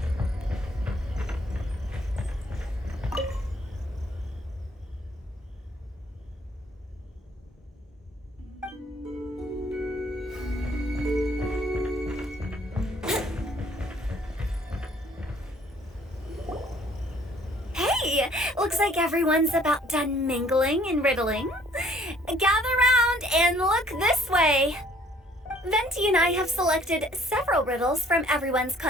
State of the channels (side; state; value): both; normal; correlation 0.59